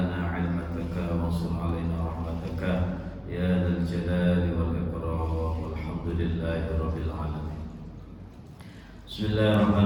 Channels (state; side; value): identical; both; correlation 1.00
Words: 'ilmataka wa ansur 'alaina rahmataka ya dzal jalali wal ikram. Walhamdulillahi rabbil alamin.